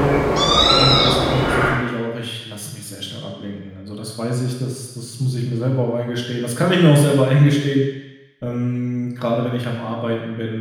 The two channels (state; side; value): identical; both; correlation 1.00